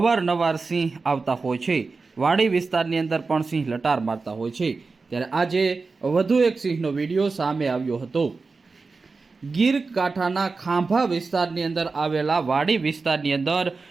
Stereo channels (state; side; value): quieter; left; 4.2 dB